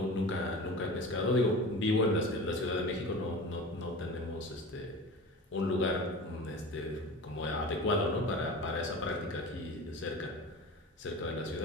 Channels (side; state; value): both; normal; correlation 0.34